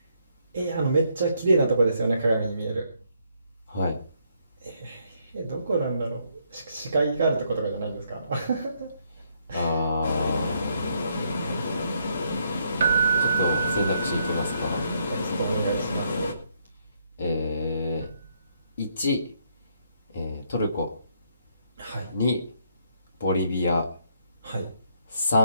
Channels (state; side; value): inverted; both; correlation -0.73